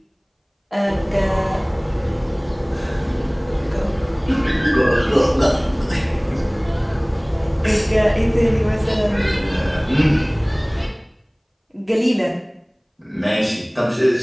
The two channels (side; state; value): both; identical; correlation 1.00